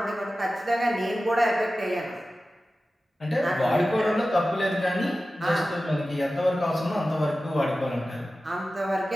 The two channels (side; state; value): both; normal; correlation 0.95